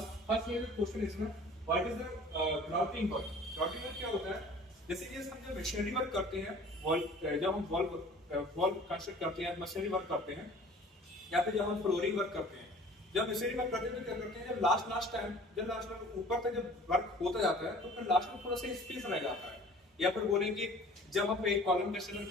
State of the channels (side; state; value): both; normal; correlation 0.47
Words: क्वेश्चन इसमें what is the grouting work. Grouting work क्या होता है? जैसे कि हम जब मशीनरी वर्क करते हैं, जब हम वॉल कंस्ट्रक्ट करते हैं, मशीनरी वर्क करते हैं, या फिर जब हम फ्लोरिंग वर्क करते हैं, जब मशीनरी वर्क करते हैं तो क्या करते हैं, जब लास्ट ऊपर तक जब वर्क होता जाता है तो फिर लास्ट में थोड़ा सा स्पेस रह जाता है। या फिर बोलेंगे जब हम एक कॉलम कंस्ट्रक्शन